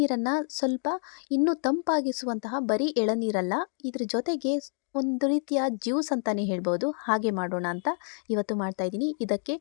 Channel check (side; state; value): right; silent; 57 dB below the other